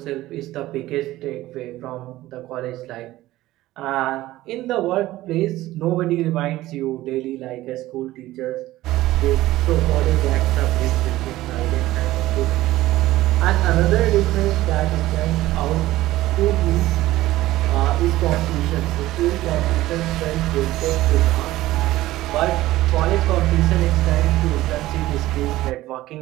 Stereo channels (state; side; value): quieter; left; 16.4 dB